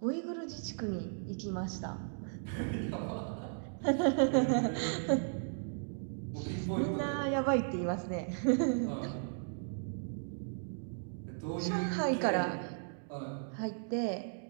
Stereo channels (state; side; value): silent; left; digital silence